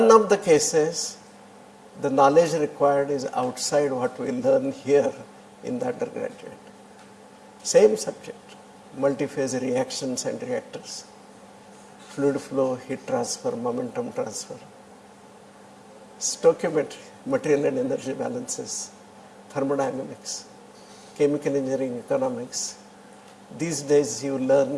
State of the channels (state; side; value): identical; both; correlation 1.00